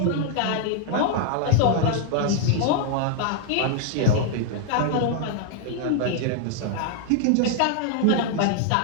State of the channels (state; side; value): different; both; correlation 0.00